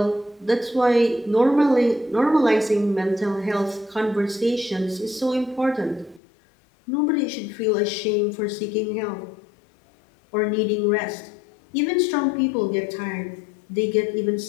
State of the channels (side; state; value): right; drops out; at 6.2 s